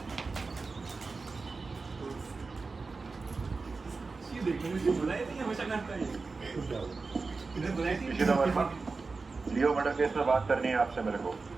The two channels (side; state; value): left; quieter; 4.1 dB